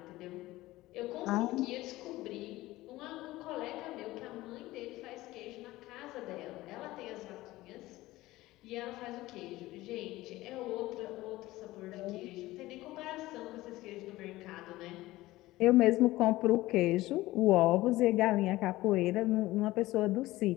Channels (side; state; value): right; quieter; 17.8 dB